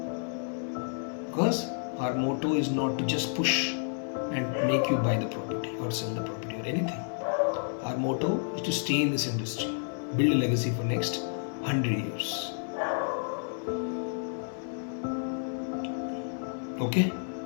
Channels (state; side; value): silent; right; digital silence